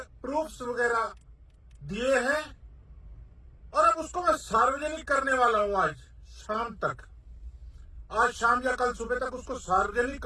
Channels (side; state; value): both; identical; correlation 1.00